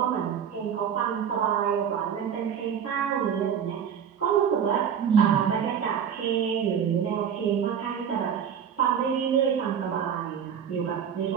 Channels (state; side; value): quieter; left; 8.0 dB